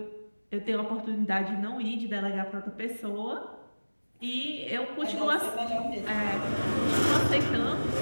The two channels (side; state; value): both; inverted; correlation -1.00